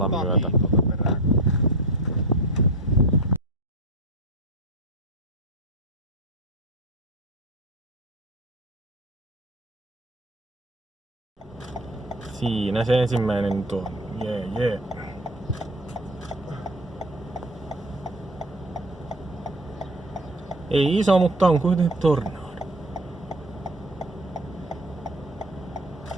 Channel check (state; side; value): normal; both; correlation 0.31